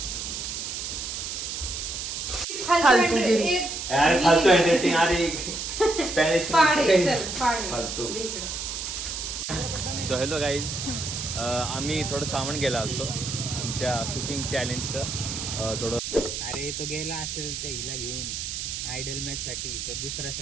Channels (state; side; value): noise; right; hiss, 5 dB below the sound